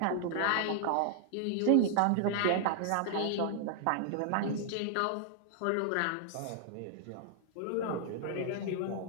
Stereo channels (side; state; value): both; different; correlation -0.01